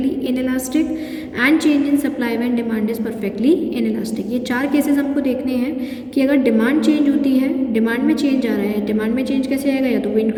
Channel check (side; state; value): both; identical; correlation 1.00